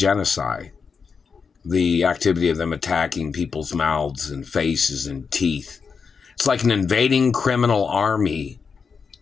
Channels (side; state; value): right; quieter; 5.6 dB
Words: The activity of them attacking people's mouths and faces and teeth. It's like an invading criminal army